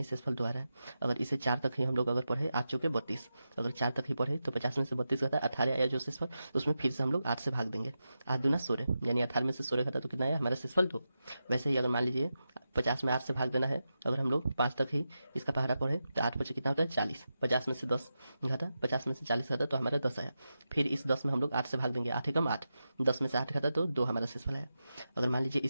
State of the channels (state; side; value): inverted; both; correlation -0.90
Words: शेषफल 2 आ रहा है। अगर इसे 4 तक ही हम लोग अगर पढ़े, 8 चौके 32, अगर 4 तक ही पढ़े तो 50 में से 32 घटा 18 आया जो शेषफल, उसमें फिर से हम लोग 8 से भाग देंगे। 8 दूना 16, यानी 18 में से 16 घटा तो कितना आया? हमारा शेषफल 2। वैसे ही अगर मान लीजिए 50 में 8 से भाग देना है, अगर हम लोग 5 तक ही इसका पहरा पढ़े तो 8 बचे कितना होता है? 40। 50 में से 10 घटा, 50 में से 40 घटा तो हमारा 10 आया। फिर इस 10 में हम लोग 8 से भाग देंगे लेंगे, 8 एकम 8, 10 में से 8 घटा तो 2 हमारा शेषफल है। अगर मान लीजिए